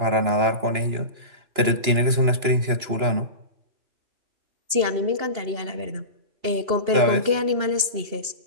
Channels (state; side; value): late; left; 2.9 ms